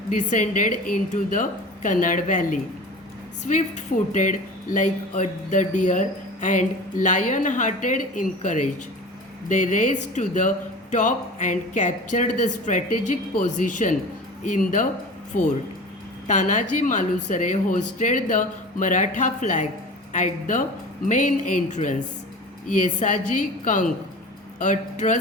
descended into the Kannad valley. Swift-footed like the deer and lion-hearted in courage, they raced to the top and captured the strategic position in the fort. Tanaji Malusare hosted the Maratha flag at the main entrance. Yesaji Kank, a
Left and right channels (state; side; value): normal; both; correlation 0.36